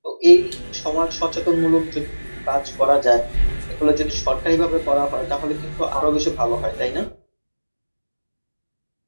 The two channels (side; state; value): both; inverted; correlation -1.00